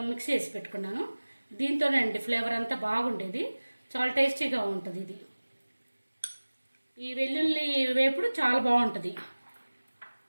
మిక్స్ చేసి పెట్టుకున్నాను. దీంతోనే అండి ఫ్లేవర్ అంతా బాగుండేది, చాలా టేస్టీగా ఉంటుంది. ఇది ఈ వెల్లుల్లి వేపుడు చాలా బాగుంటుంది.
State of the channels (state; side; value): inverted; both; correlation -1.00